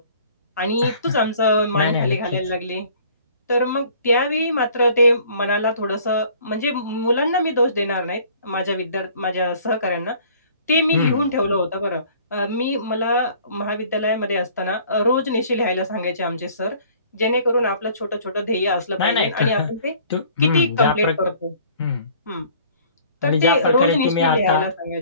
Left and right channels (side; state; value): both; inverted; correlation -0.53